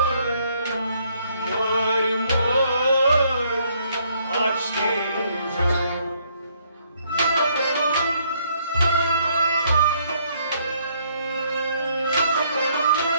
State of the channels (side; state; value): both; inverted; correlation -0.68